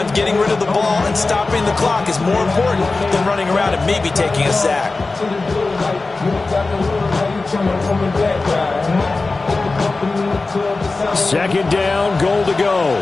getting rid of the ball and stopping the clock is more important than running around and maybe taking a sack. Second down, goal to go.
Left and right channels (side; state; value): right; quieter; 3.6 dB